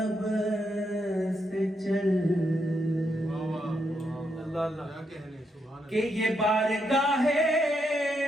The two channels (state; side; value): normal; both; correlation 0.80